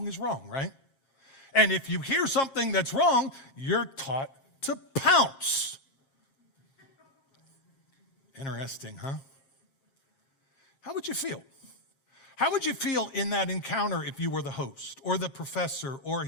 is wrong, right? And if you hear something that's wrong, you're taught to pounce. Interesting, huh? How would you feel? How would you feel in that encounter if you were the host or the professor or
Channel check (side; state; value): right; late; 7.4 ms